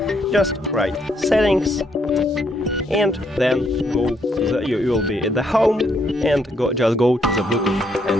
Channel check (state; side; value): normal; both; correlation 0.73